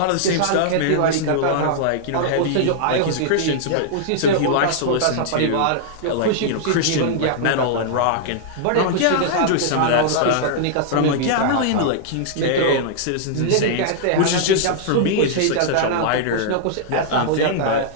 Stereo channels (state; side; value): different; both; correlation -0.01